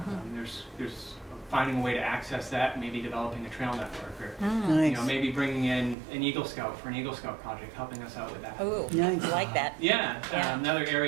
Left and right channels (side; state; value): left; drops out; at 6.0 s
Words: There's finding a way to access that, maybe developing a trail network, or Nice. maybe bringing in an Eagle Scout for an Eagle Scout project, helping us out with that. Ooh, Nice. I like that. Yeah, Yeah. another